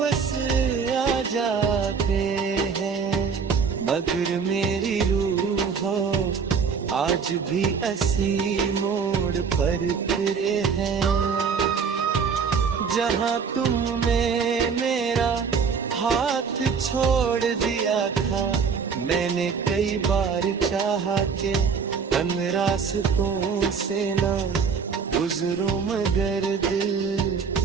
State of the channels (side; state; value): left; quieter; 5.9 dB